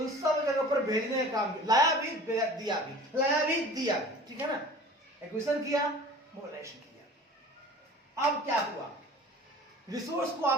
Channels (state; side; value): normal; both; correlation 0.43